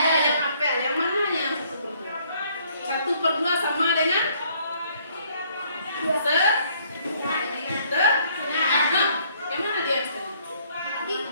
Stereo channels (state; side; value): inverted; both; correlation -0.64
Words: yang apel. Yang mana yang 1/2 sama dengan yang mana dia?